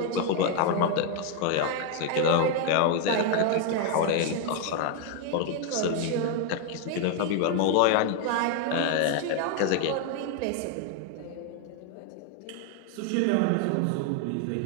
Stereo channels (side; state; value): both; different; correlation 0.00